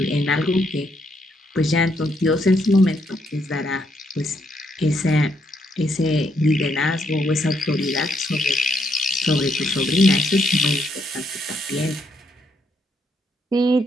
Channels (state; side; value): normal; both; correlation 0.75